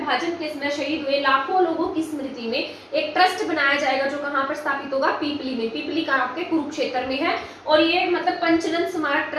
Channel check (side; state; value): both; identical; correlation 1.00